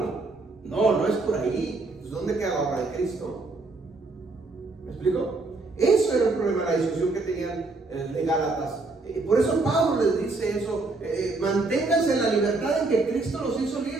No es por ahí. Entonces, ¿dónde queda la obra de Cristo? ¿Me explico? Eso era el problema, la discusión que tenían de Gálatas. Por eso Pablo les dice eso, manténganse en la libertad en que Cristo los hizo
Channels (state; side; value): quieter; left; 3.4 dB